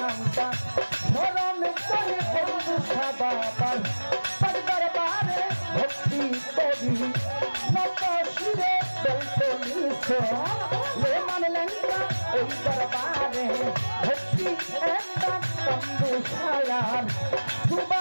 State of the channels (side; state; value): both; inverted; correlation -1.00